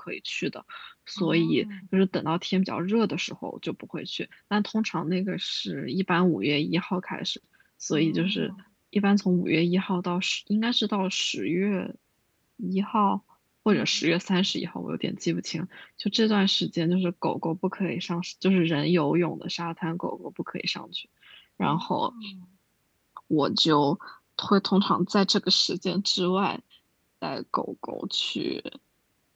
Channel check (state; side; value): identical; both; correlation 1.00